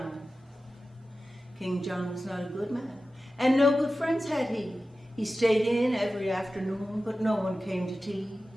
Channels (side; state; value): both; normal; correlation 0.94